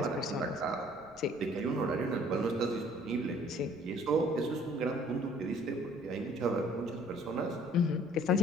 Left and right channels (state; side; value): noise; left; rumble, 27 dB below the sound